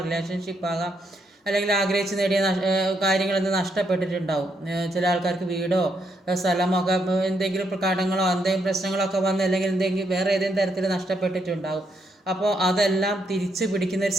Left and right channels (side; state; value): both; normal; correlation 0.77